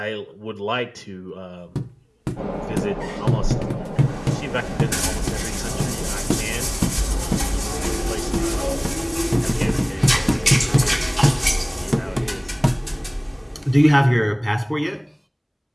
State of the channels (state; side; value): identical; both; correlation 1.00